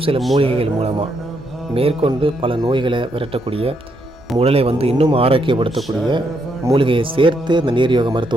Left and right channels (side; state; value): both; normal; correlation 0.77